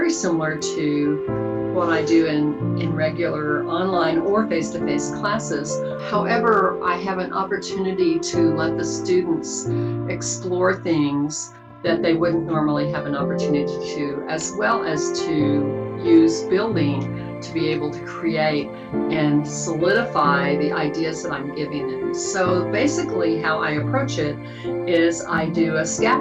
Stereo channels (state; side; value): identical; both; correlation 1.00